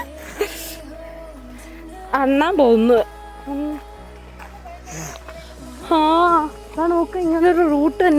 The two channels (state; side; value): identical; both; correlation 1.00